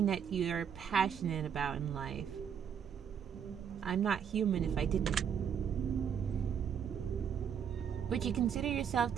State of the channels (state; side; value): quieter; left; 7.9 dB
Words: that you're passionate about in life? I'm not human if I didn't. Would you consider yourself